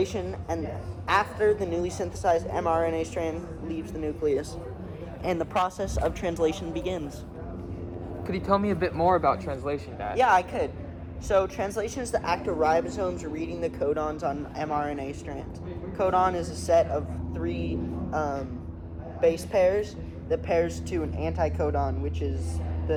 and after the newly synthesized mRNA strand leaves the nucleus, and the process of translation begins. Could you tell me a bit more about translation, Dad? Yeah, I could. So translation is the act of ribosomes reading the codons on mRNA strands. Codon is a set of three base pairs that pairs to an anticodon, which is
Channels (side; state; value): both; identical; correlation 1.00